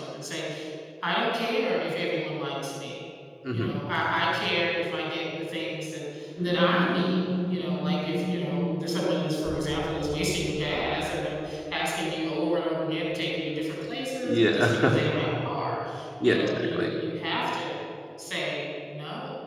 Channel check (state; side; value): identical; both; correlation 1.00